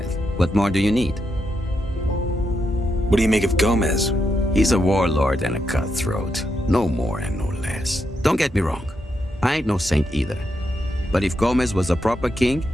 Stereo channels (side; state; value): both; normal; correlation 0.82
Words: What more do you need? What do you make of Gomez? He's a warlord and a cutthroat. No more and no less. Don't get me wrong. I ain't no saint either. But if Gomez was a proper king,